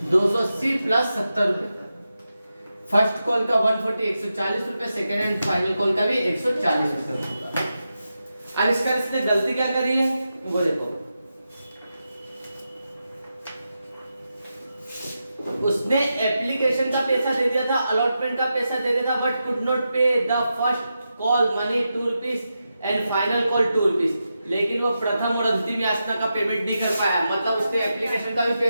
प्लस 70 रुपए। फर्स्ट कॉल का 140 140 रुपए, सेकेंड एंड फाइनल कॉल का भी 140 रुपए। अब इसने गलती क्या करी है वो देखो। उसने एप्लीकेशन का पैसा दे दिया था, अलॉटमेंट का पैसा दे दिया था, बट कुड नॉट पे the first call money 2 rupees and final call 2 rupees. लेकिन वो प्रथम और अंतिम याचना का पेमेंट नहीं कर पाया। मतलब उसने एप्लीकेशन का भी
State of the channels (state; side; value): inverted; both; correlation -0.89